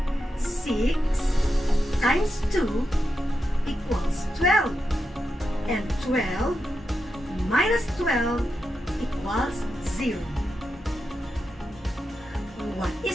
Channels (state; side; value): normal; both; correlation 0.87